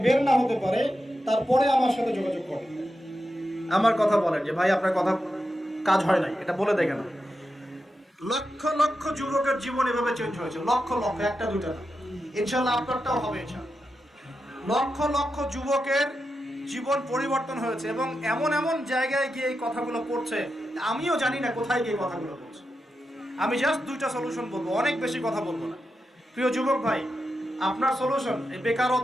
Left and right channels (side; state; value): both; normal; correlation 0.88